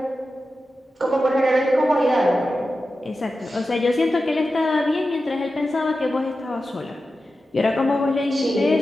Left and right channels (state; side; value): normal; both; correlation 0.92